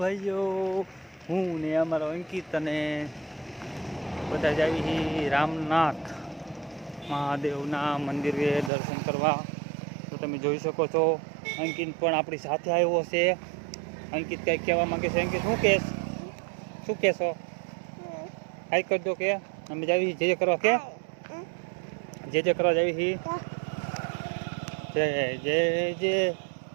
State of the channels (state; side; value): drops out; left; at 8.7 s